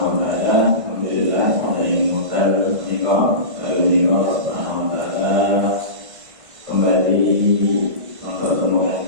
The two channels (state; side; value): late; left; 1.5 ms